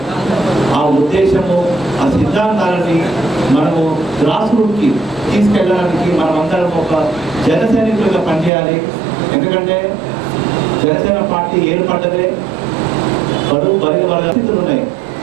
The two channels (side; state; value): left; drops out; at 8.5 s